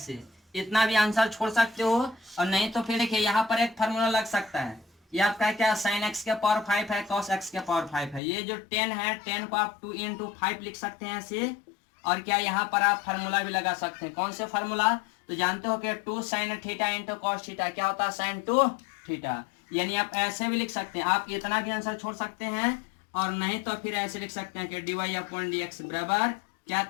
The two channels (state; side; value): drops out; right; at 8.2 s